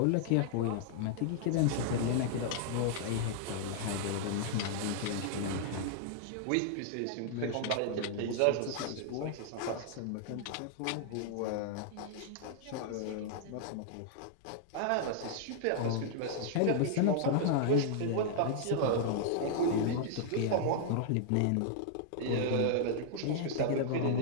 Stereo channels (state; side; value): different; both; correlation -0.01